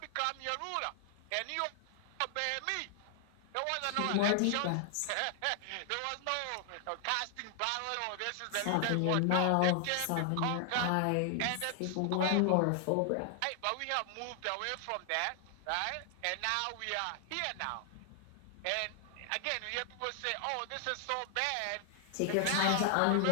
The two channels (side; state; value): both; different; correlation 0.00